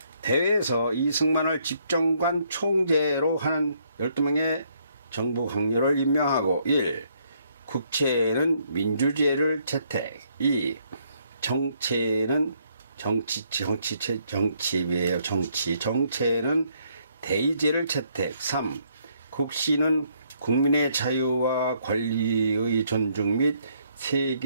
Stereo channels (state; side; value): inverted; both; correlation -0.70